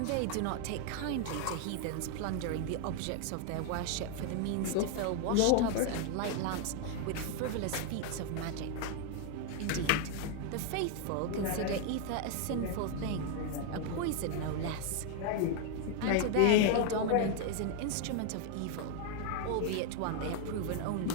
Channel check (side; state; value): both; different; correlation 0.01